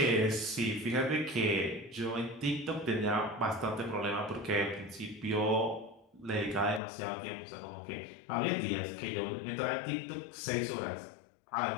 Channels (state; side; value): drops out; right; at 6.8 s